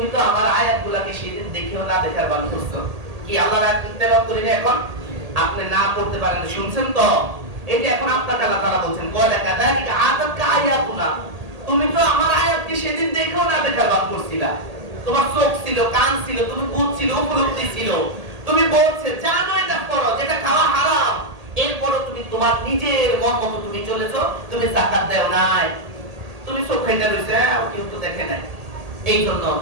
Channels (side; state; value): left; late; 1.8 ms